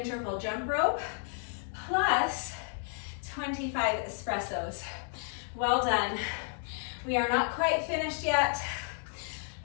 jump rope, plus 25 espressos. Well done. We are not quite finished yet.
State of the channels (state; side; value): silent; right; 56 dB below the other